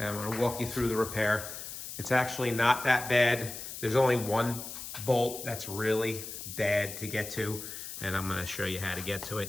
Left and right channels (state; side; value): noise; left; hiss, 9 dB below the sound